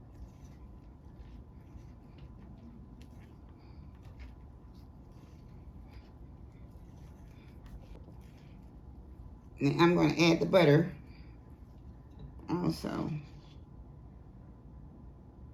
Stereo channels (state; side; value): identical; both; correlation 1.00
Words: And I'm going to add the butter also.